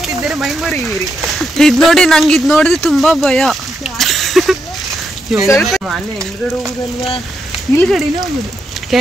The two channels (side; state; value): both; normal; correlation 0.82